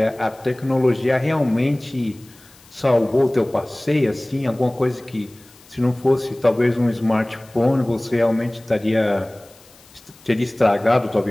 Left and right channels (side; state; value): left; noise; hiss, 26 dB below the sound